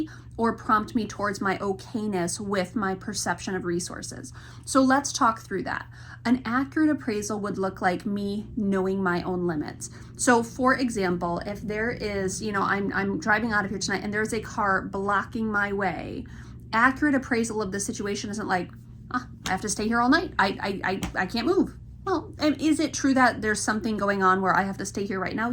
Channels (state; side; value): identical; both; correlation 1.00